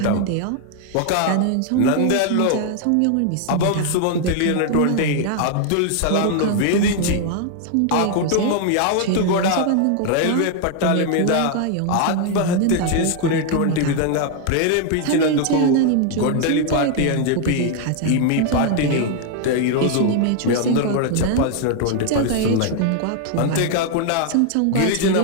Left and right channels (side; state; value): both; different; correlation 0.00